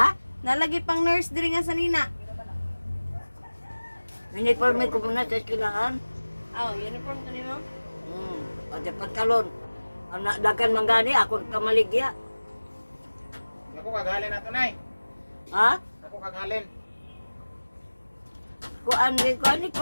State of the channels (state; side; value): inverted; both; correlation -1.00